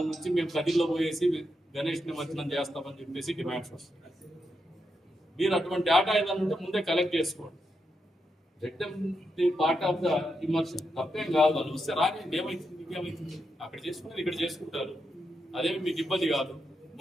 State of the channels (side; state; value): both; normal; correlation 0.84